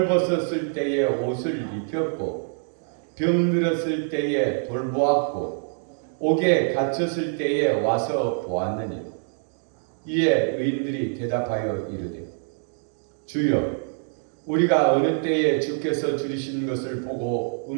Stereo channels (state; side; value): silent; left; digital silence